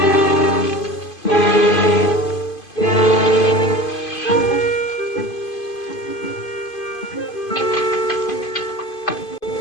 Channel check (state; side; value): late; right; 2.5 ms